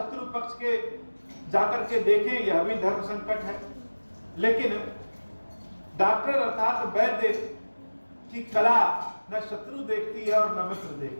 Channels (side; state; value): both; inverted; correlation -1.00